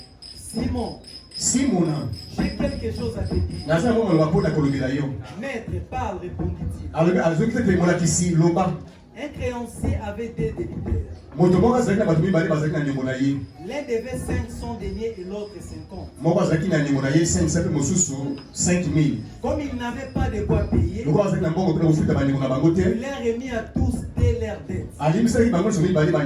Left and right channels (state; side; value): identical; both; correlation 1.00